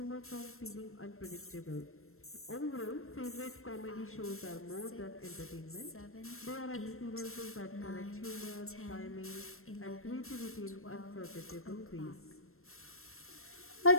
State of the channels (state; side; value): late; right; 0.62 ms